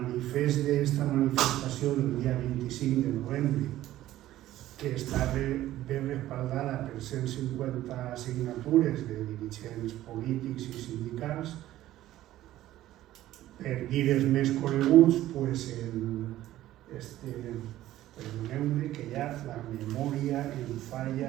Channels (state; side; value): quieter; left; 14.3 dB